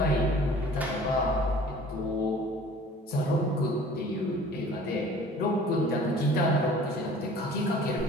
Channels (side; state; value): both; normal; correlation 0.48